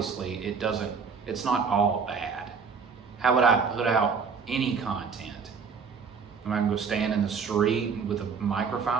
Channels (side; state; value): left; quieter; 5.6 dB